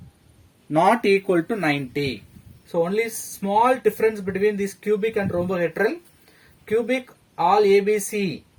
not equal to 90. So only small difference between this cubic and rhombohedral. Cubic, all ABC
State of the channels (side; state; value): both; identical; correlation 1.00